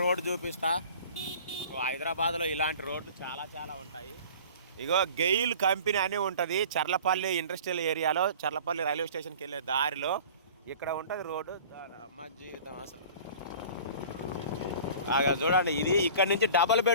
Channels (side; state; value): both; inverted; correlation -0.44